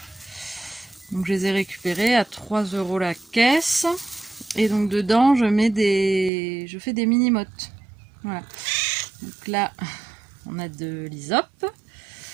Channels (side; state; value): left; drops out; at 6.3 s